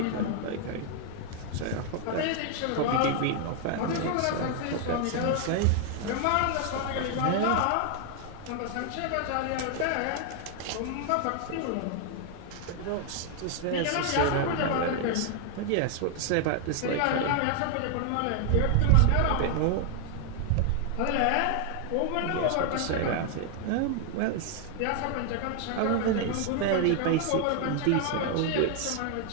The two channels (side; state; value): both; different; correlation 0.00